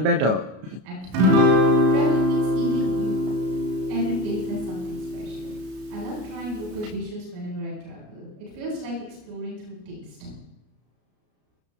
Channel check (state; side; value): late; left; 33 ms